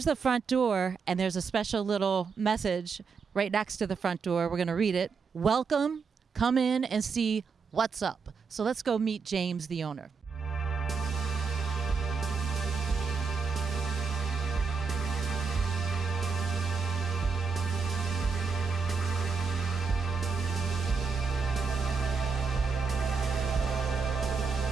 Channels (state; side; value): quieter; left; 5.3 dB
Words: the front door, and there's a special little message right next to the front door. We're going to read it. Welcome, come in and see what's up. So let's go meet James, the owner.